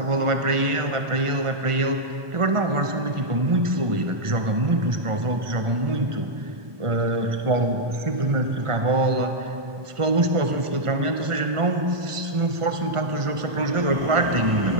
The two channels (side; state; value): left; late; 1.4 ms